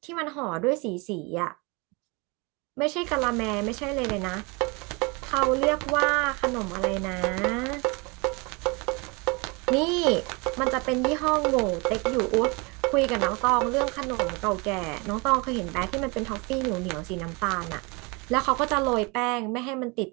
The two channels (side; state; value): left; quieter; 28.5 dB